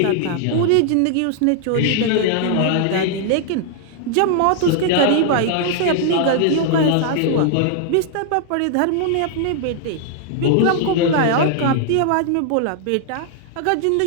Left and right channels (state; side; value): different; both; correlation -0.01